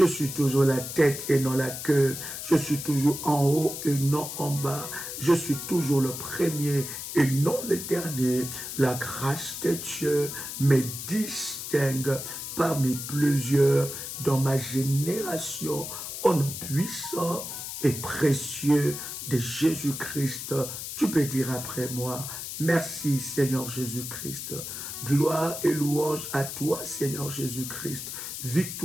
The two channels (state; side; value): noise; left; hiss, 7 dB below the sound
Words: suis toujours la tête et non la queue. Je suis toujours en haut et non en bas. Je suis toujours le premier et non le dernier. La grâce de Dieu me distingue parmi plusieurs dans ma génération. Au nom puissant et précieux de Jésus-Christ. Tu peux dire après moi: merci Seigneur Jésus-Christ. Gloire et louange à toi Seigneur Jésus-Christ.